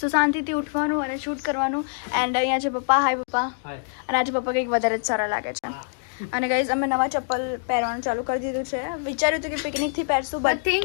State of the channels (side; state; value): right; silent; digital silence